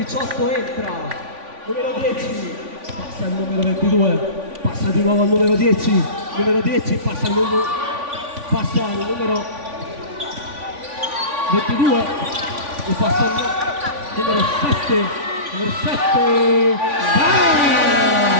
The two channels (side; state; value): left; late; 3.5 ms